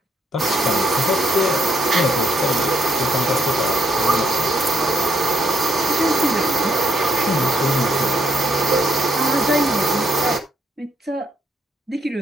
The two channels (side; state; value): both; normal; correlation 0.74